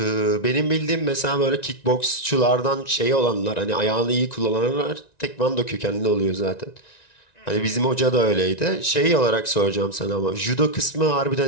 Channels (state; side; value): late; right; 1.9 ms